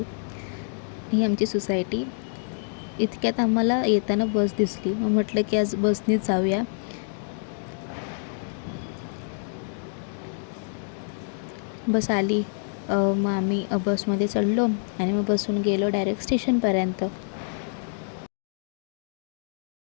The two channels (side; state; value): right; silent; digital silence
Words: ही आमची सोसायटी. इतक्यात आम्हाला येताना बस दिसली. मग म्हटलं की आज बसनीच जाऊया. बस आली. मग आम्ही बसमध्ये चढलो आणि मग बसून गेलो डायरेक्ट स्टेशनपर्यंत.